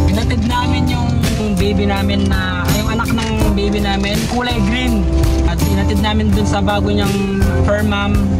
hinatid namin yung baby namin yung anak ng baby namin kulay green at hinatid namin dun sa bago niyang fur mom.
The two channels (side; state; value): both; identical; correlation 1.00